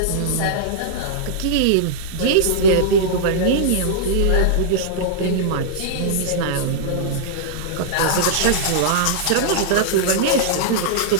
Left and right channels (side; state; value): both; different; correlation -0.02